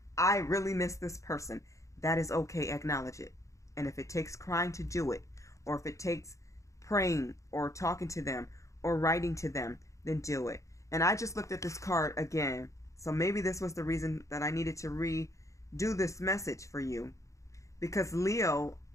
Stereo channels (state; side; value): late; right; 0.15 ms